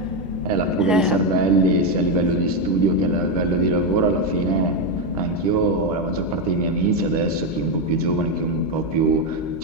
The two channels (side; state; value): both; normal; correlation 0.07